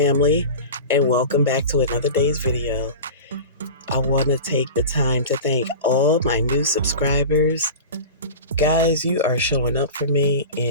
and welcome back to another day's video. I want to take the time to thank all my new subscribers. Guys, you are showing up for me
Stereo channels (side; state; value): both; inverted; correlation -0.32